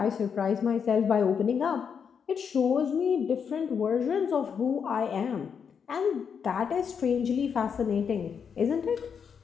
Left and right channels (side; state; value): right; quieter; 6.8 dB